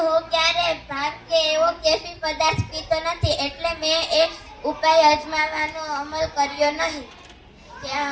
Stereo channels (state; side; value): identical; both; correlation 1.00